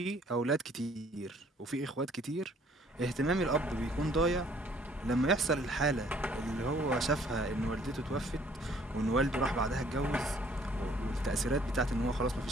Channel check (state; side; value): normal; both; correlation 0.60